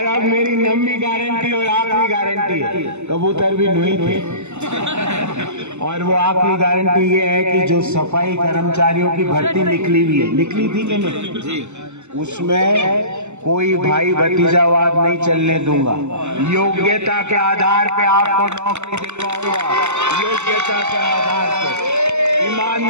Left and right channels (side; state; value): left; late; 0.83 ms